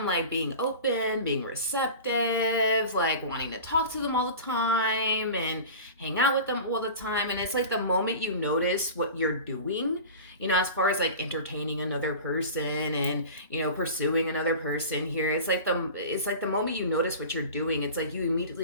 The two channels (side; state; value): both; inverted; correlation -0.35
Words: like being open, being receptive, like wanting to talk to them all the time and hang out with them all the time, and it's like the moment you notice what you're doing, you know, as far as like entertaining another person and, you know, pursuing another person here, it's like the moment you notice what you're doing, it's like you